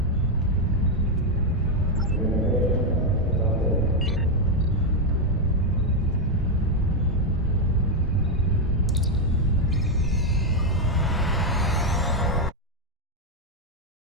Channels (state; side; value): normal; both; correlation 0.03